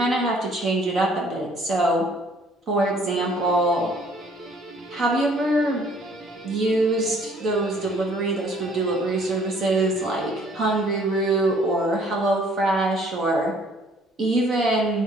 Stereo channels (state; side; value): normal; both; correlation 0.59